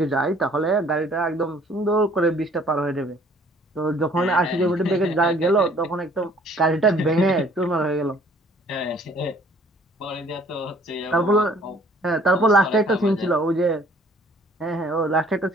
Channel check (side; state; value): both; normal; correlation 0.57